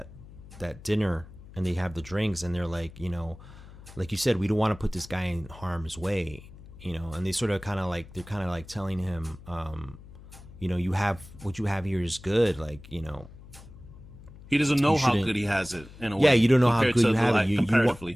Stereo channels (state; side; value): noise; left; hum, 18 dB below the sound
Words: dinner and they have the drinks and they're like, like you said, we don't want to put this guy in harm's way, and they sort of kind of like, they're kind of like telling him, you have, what you have here is good. Like, he doesn't know how good he has it in a way. Yeah. You don't know how good you have it.